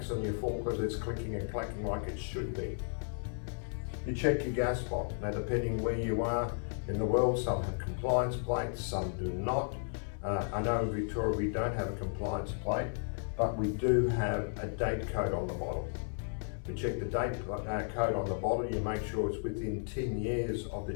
on your forklift, it's clicking and clacking like it should be. You check your gas bottle. Now, depending where you are in the world, some have compliance plates, some do not. I know in Victoria we don't have a compliance plate, but we do have a date code on the bottle. We check the date code on the bottle, you make sure it's within 10 years of the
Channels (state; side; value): silent; right; 55 dB below the other